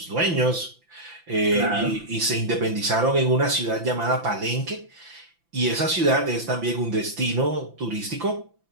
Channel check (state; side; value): late; left; 5.9 ms